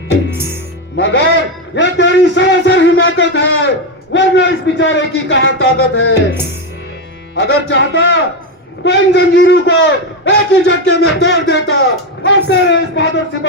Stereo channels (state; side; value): normal; both; correlation 0.10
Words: मगर यह तेरी सरासर हिमाकत है, वरना इस बेचारे की कहां ताकत है। अगर चाहता तो इन जंजीरों को एक ही झटके में तोड़ देता और तेरे इस बहादुर